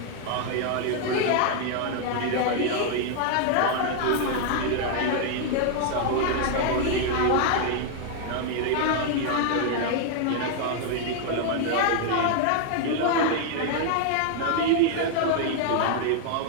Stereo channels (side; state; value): both; different; correlation 0.00